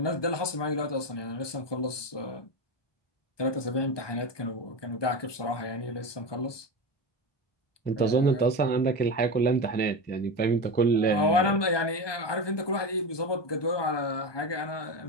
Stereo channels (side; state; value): right; late; 1.2 ms